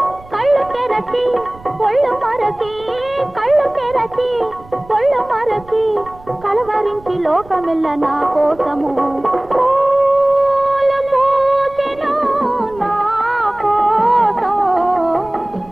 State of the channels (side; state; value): right; noise; rumble, 22 dB below the sound